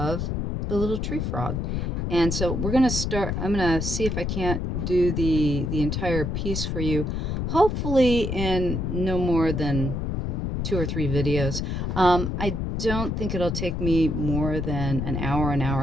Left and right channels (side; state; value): left; noise; rumble, 1 dB below the sound